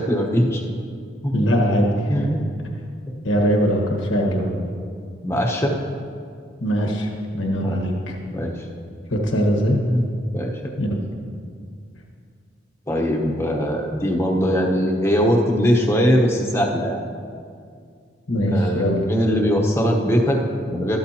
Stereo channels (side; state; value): both; normal; correlation 0.72